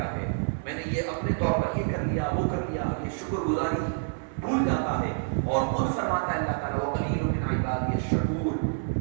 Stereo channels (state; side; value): silent; left; 59 dB below the other